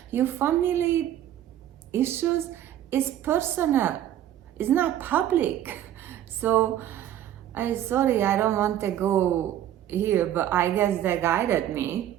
Your family issues is personal. It's not public. So I'm sorry, I don't want to go here, but I guess they guided me.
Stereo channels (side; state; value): left; quieter; 11.7 dB